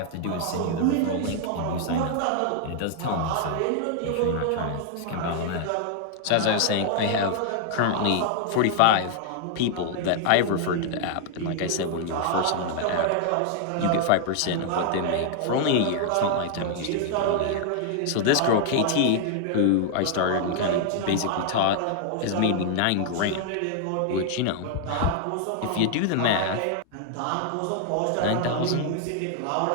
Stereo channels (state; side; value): different; both; correlation 0.00